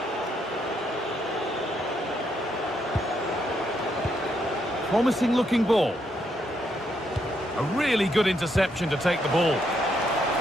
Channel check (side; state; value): both; normal; correlation 0.76